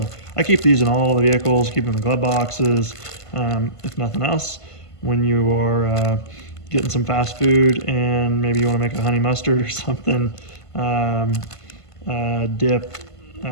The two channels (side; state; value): right; late; 1.5 ms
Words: I keep these in all the vehicles, keep them in glove boxes. If nothing else, when you are getting some fast food and maybe you want to make a honey mustard or something, dip